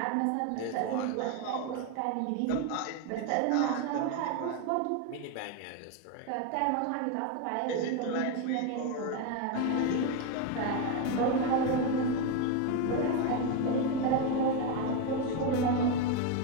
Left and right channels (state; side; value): different; both; correlation 0.02